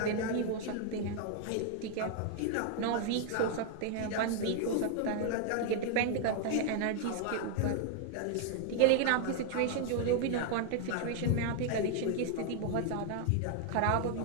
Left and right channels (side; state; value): both; different; correlation 0.00